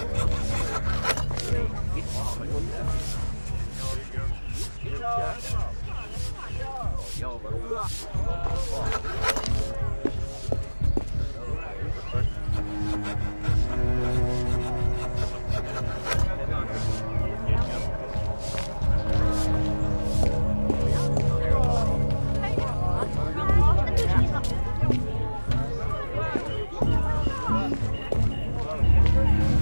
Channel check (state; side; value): inverted; both; correlation -1.00